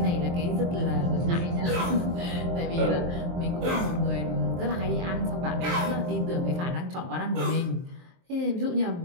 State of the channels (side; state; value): left; late; 23 ms